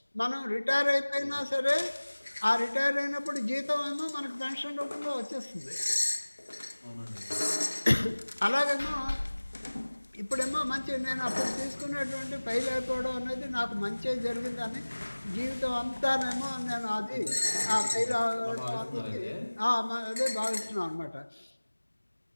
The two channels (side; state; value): both; inverted; correlation -1.00